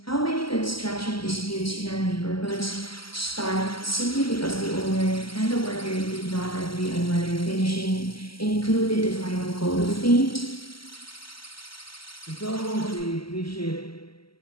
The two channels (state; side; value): late; right; 0.74 ms